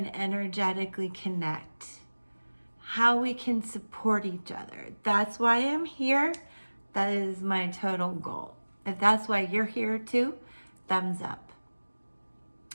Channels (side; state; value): both; inverted; correlation -1.00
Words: energetically connect, how we can support each other. That's why I'm here. That is my total goal. If that's why you're here too, thumbs up.